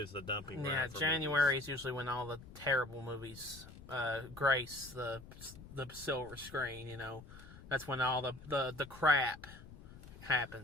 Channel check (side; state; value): left; noise; rumble, 16 dB below the sound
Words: it's the dumping ground. Yeah, January is usually when all the terrible movies grace the silver screen, That's when all the crap